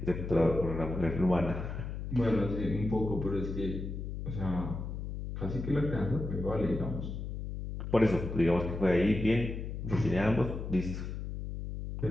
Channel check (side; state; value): left; noise; hum, 6 dB below the sound